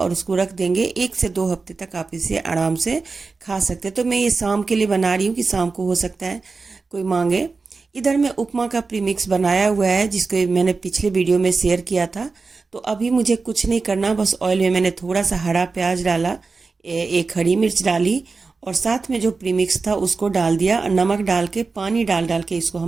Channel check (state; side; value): quieter; left; 4.2 dB